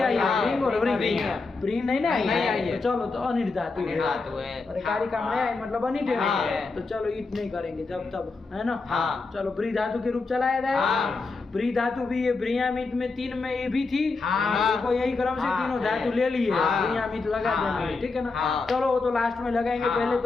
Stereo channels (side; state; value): right; quieter; 4.0 dB